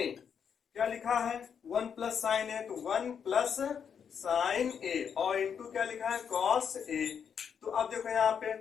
क्या लिखा है 1 प्लस साइन ए तो 1 प्लस साइन ए और इंटू क्या लिखा है कॉस ए। तो अब देखो यहाँ पे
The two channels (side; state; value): right; quieter; 7.4 dB